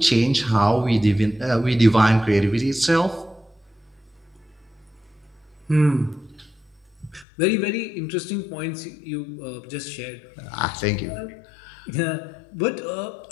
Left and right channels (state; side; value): drops out; right; at 7.2 s